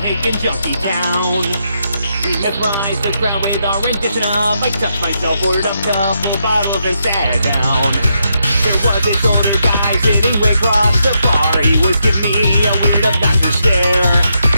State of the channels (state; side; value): inverted; both; correlation -0.81